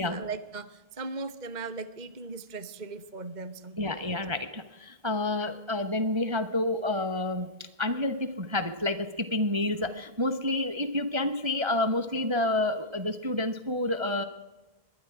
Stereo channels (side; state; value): left; late; 1.3 ms